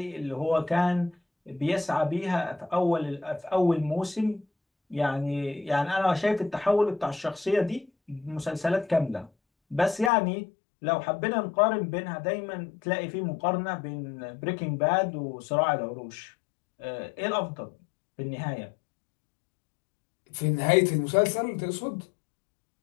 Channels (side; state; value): right; drops out; at 10.1 s